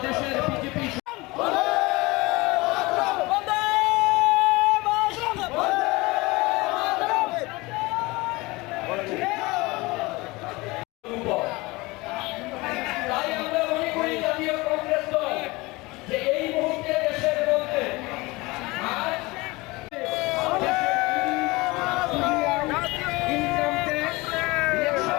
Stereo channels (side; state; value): right; quieter; 22.8 dB